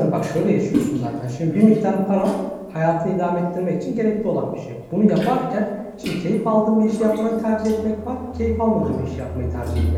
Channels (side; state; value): both; identical; correlation 1.00